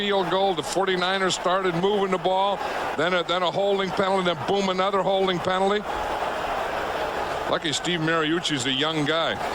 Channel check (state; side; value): identical; both; correlation 1.00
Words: goal. The 49ers started moving the ball. Then a holding penalty. Then boom, another holding penalty. Lucky Steve Mariucci's a young guy.